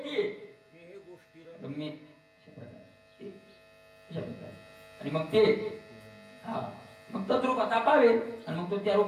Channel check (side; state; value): both; identical; correlation 1.00